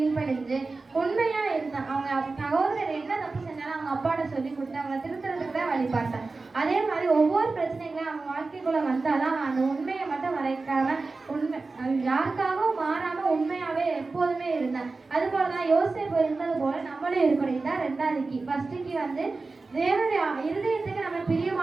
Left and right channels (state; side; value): quieter; left; 3.8 dB